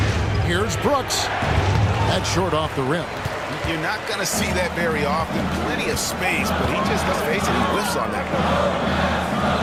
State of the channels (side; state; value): both; identical; correlation 1.00